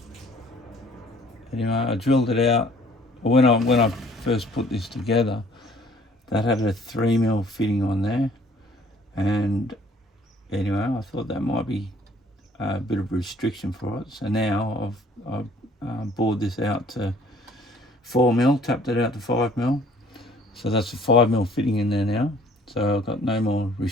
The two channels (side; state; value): both; normal; correlation 0.57